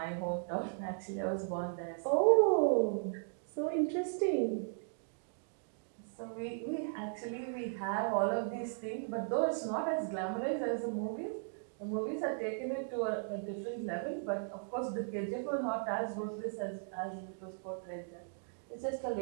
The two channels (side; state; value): left; silent; digital silence